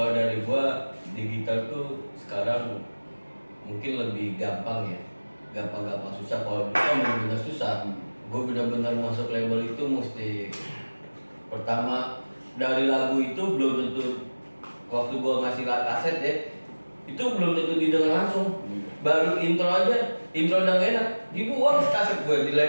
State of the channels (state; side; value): inverted; both; correlation -1.00